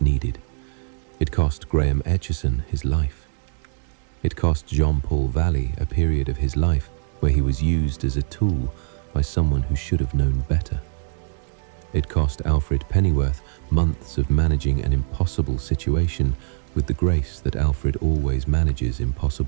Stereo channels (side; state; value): left; silent; digital silence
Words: needed. It cost Graham Etchison his life. It cost Jean-Paul Valley a period of his life where he was used as a tool by someone who should have known better. It cost Alfred Pennyworth months of managing an impossible situation with the grace that Alfred always manages